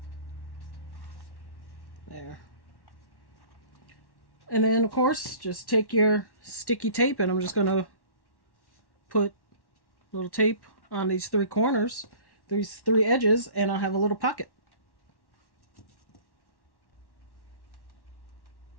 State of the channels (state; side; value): late; right; 1.1 ms